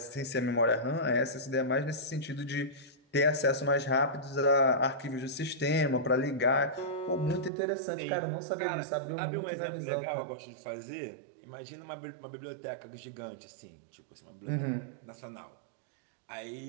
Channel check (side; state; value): left; drops out; at 7.5 s